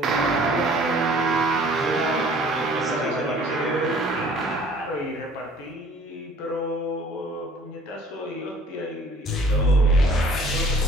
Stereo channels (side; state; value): both; normal; correlation 0.53